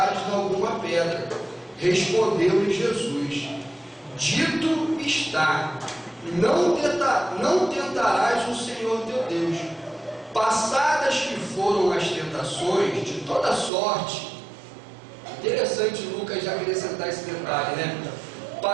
em alguma pedra. Respondeu-lhe Jesus: Dito está: não tentarás o Senhor teu Deus. Passadas que foram as tentações de toda sorte. Interessante Lucas já acrescentar esse detalhe, né?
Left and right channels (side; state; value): left; drops out; at 13.7 s